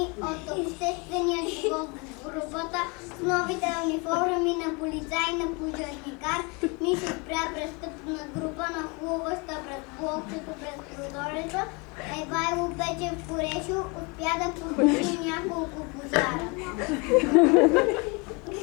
от обществения живот в групата с новите униформи на полицай и на пожарникар. Ни се спря престъпна група, нахлуваща през блокчето през прозореца. Евайло Печев Корешо успя да потуши няколко пожара.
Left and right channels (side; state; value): right; quieter; 29.8 dB